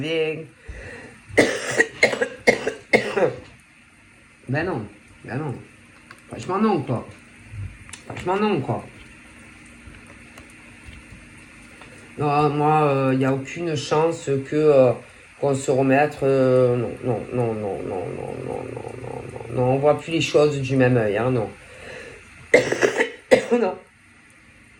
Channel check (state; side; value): identical; both; correlation 1.00